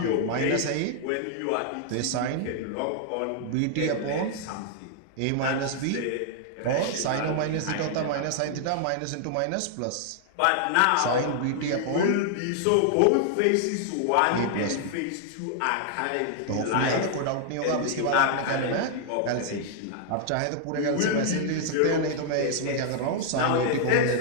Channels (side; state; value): both; different; correlation -0.01